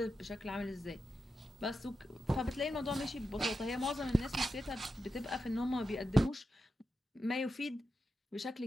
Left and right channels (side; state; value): both; normal; correlation 0.89